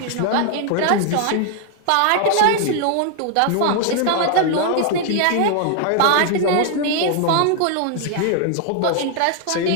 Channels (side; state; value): both; different; correlation 0.00